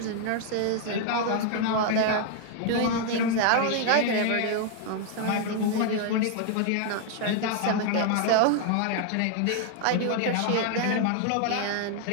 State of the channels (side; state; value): both; different; correlation 0.00